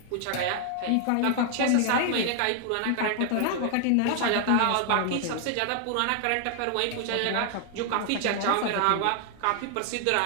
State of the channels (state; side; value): different; both; correlation 0.00